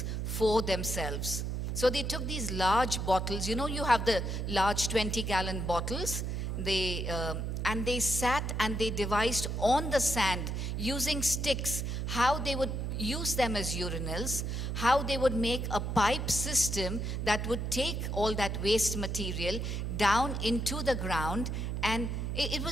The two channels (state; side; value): noise; right; hum, 2 dB below the sound